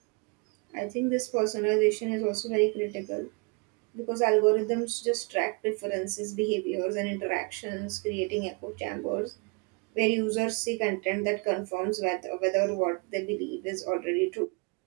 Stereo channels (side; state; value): left; quieter; 31.7 dB